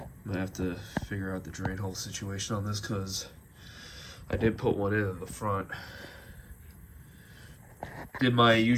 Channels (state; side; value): identical; both; correlation 1.00